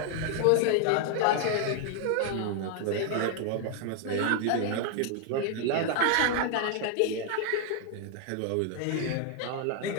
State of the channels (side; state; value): both; different; correlation 0.00